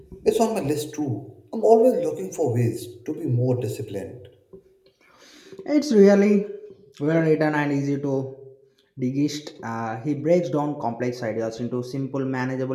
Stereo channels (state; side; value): identical; both; correlation 1.00